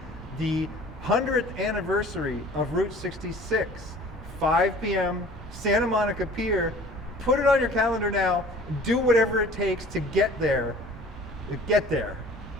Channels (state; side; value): normal; both; correlation 0.48